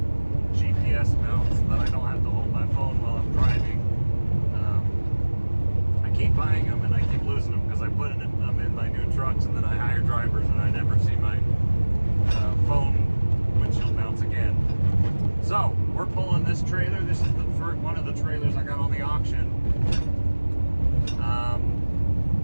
GPS mounts so that I don't have to hold my phone while I'm driving. I keep buying them and I keep losing them because I put them in my new trucks, and then I hire drivers and I never see my phone windshield mounts again. So we're pulling this trailer. This is one of the trailers I got on the auction.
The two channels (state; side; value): inverted; both; correlation -1.00